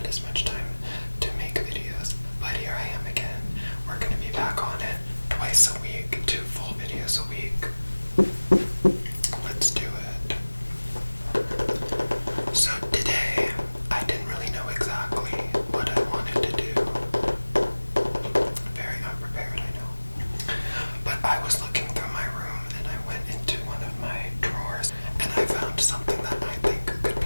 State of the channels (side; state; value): both; inverted; correlation -1.00